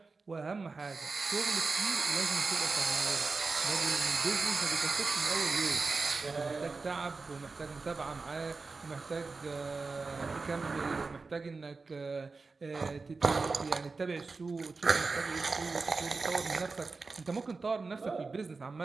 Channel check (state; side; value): quieter; left; 4.1 dB